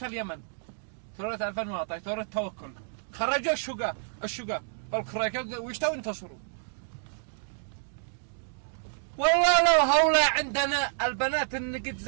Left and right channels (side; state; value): left; silent; digital silence